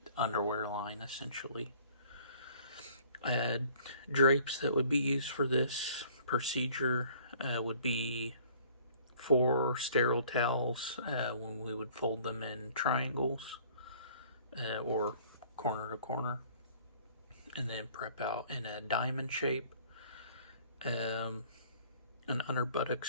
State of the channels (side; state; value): both; inverted; correlation -0.54